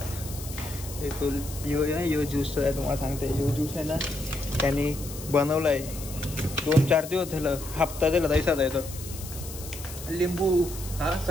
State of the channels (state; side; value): noise; left; hiss, 13 dB below the sound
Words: फुल यो ज्यूस आहे तुम्हाला सांगते. यो ज्यूस आहे ना त्यांनी बनवलं आहे 2-4 दिवस झालं. हप्ता दिला तैसाच आहे तो. लिंबू हा